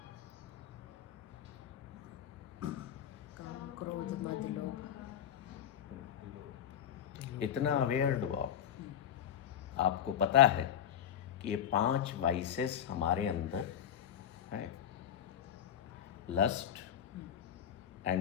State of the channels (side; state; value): right; quieter; 9.7 dB